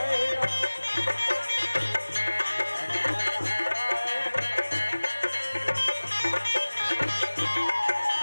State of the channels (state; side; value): inverted; both; correlation -1.00